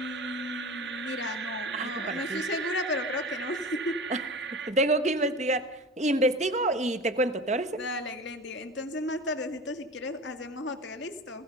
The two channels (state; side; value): normal; both; correlation 0.33